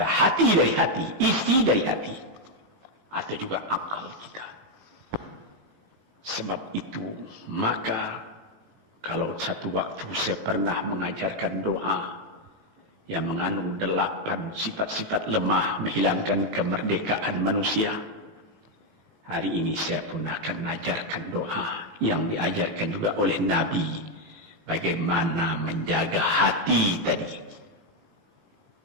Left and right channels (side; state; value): left; late; 18 ms